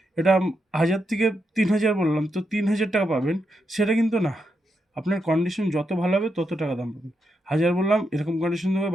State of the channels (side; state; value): both; normal; correlation 0.83